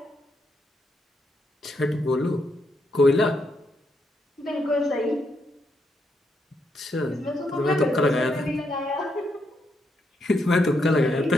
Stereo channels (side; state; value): both; normal; correlation 0.79